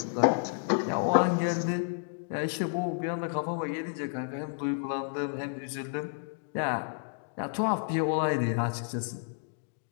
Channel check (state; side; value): silent; right; digital silence